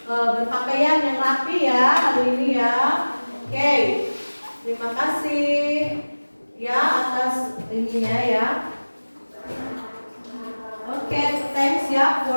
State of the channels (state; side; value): inverted; both; correlation -1.00